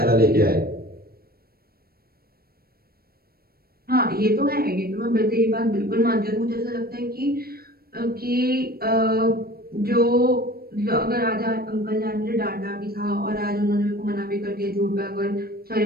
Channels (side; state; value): left; late; 0.44 ms